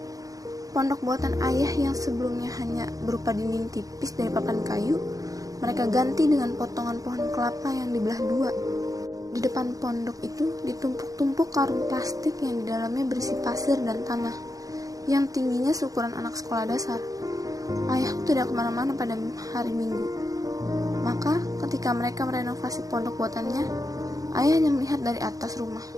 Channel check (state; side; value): late; left; 0.17 ms